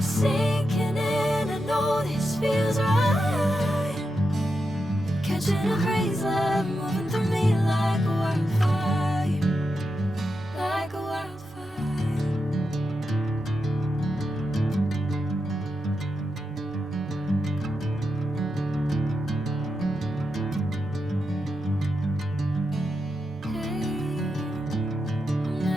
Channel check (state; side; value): noise; right; rumble, 27 dB below the sound